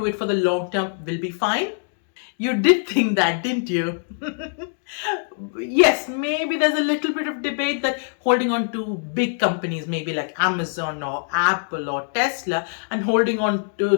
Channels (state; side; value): silent; right; digital silence